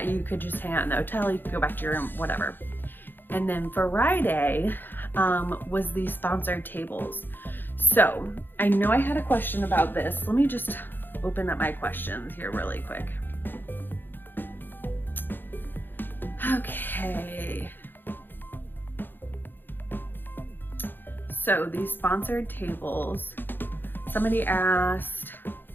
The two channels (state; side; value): late; right; 0.095 ms